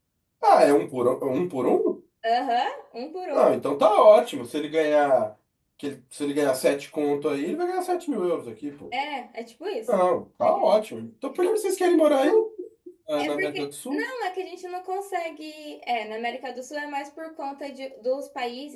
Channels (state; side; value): identical; both; correlation 1.00